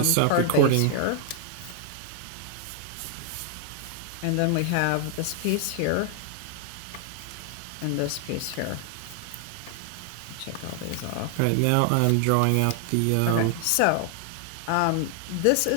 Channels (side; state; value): both; different; correlation 0.00